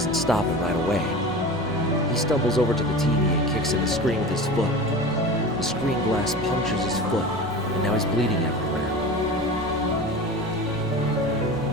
stop him right away. He stumbles over to the TV and kicks in the screen with his foot. The screen glass punctures his foot, and now he's bleeding everywhere.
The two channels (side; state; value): both; normal; correlation 0.32